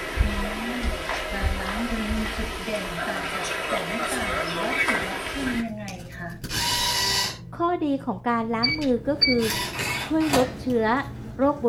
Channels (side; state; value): both; identical; correlation 1.00